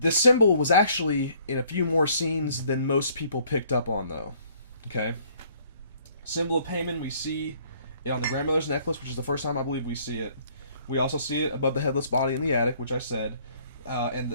symbol was actually in a few more scenes than most people picked up on, though. Okay? Symbol of payment, we see it on the grandmother's necklace, which is the first time I believe we see it. We also see it above the headless body in the attic, which I said.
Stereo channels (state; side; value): inverted; both; correlation -0.61